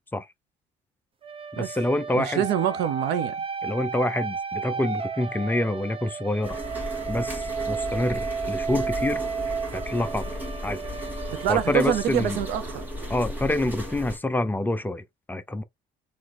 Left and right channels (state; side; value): normal; both; correlation 0.64